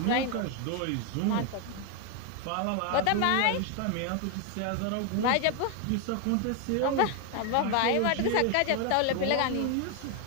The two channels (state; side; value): different; both; correlation 0.01